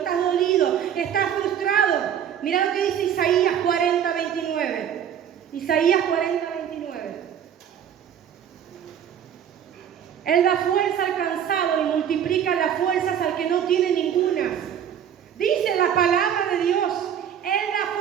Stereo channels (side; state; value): left; quieter; 9.0 dB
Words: dolido, estás frustrado. Mira lo que dice Isaías 40:29. Isaías 40:29. Él da fuerza al cansado y multiplica las fuerzas al que no tiene ninguna. Dice la palabra de Dios, Él da